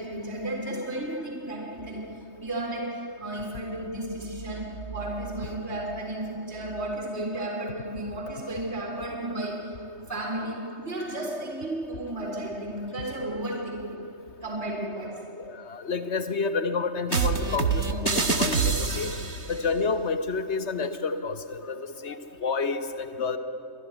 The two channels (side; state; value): right; late; 3.2 ms